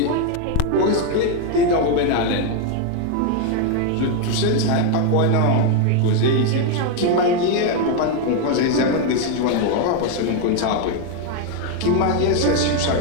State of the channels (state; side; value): different; both; correlation 0.01